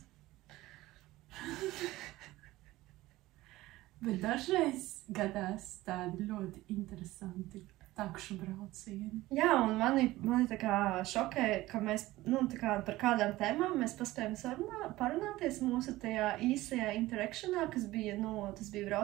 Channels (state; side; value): quieter; left; 17.7 dB